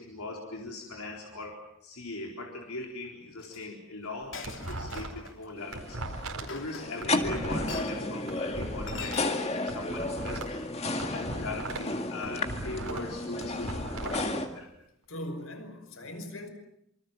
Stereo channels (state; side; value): normal; both; correlation 0.30